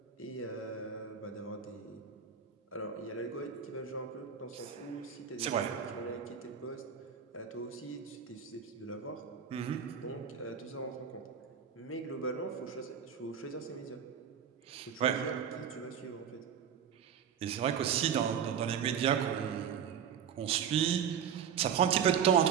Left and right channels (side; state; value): left; quieter; 7.8 dB